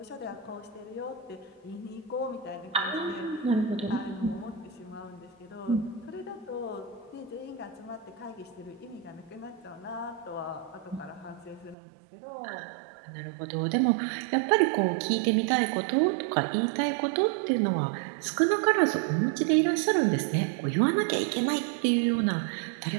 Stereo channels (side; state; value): left; drops out; at 11.8 s